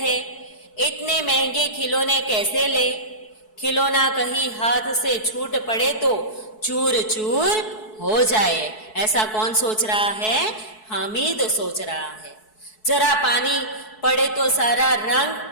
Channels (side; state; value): right; late; 4.6 ms